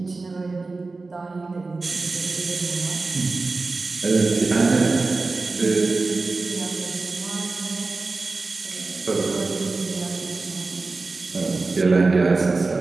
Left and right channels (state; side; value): quieter; left; 3.7 dB